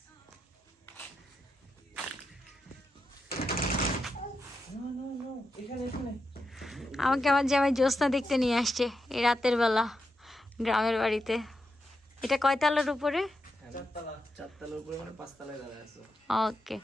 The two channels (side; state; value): both; normal; correlation 0.86